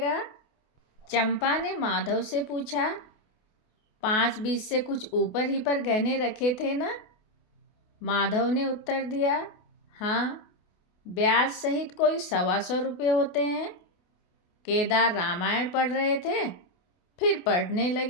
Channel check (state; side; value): late; right; 28 ms